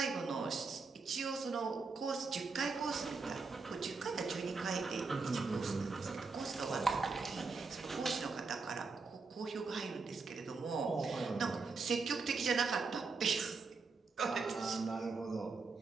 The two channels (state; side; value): quieter; left; 4.4 dB